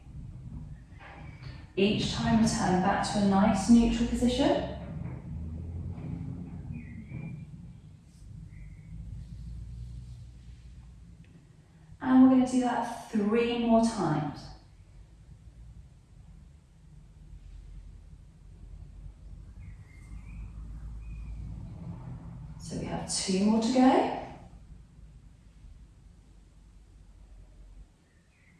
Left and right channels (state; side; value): identical; both; correlation 1.00